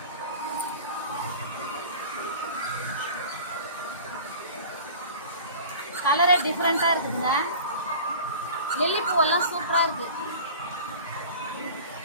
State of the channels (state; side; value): inverted; both; correlation -0.40